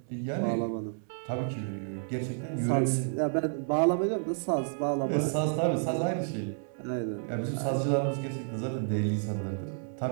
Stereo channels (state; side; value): silent; left; digital silence